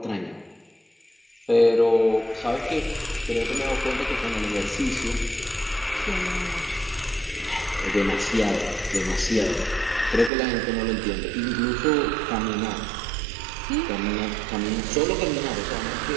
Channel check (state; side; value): drops out; left; at 10.3 s